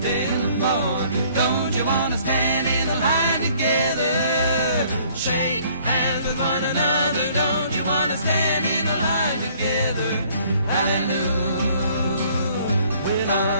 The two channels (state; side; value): inverted; both; correlation -0.59